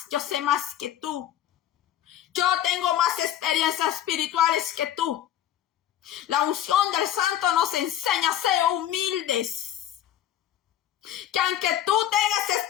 yo sé más que tú. Yo tengo más experiencias espirituales que tú. La unción del Santo nos enseña a ser humildes. Que aunque tú tengas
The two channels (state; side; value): quieter; right; 11.5 dB